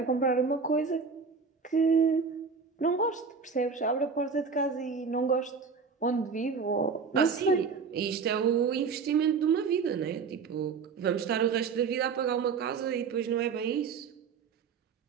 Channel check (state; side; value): quieter; left; 5.4 dB